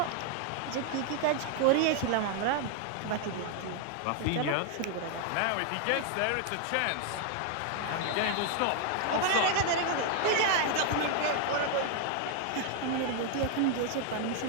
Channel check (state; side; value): different; both; correlation 0.00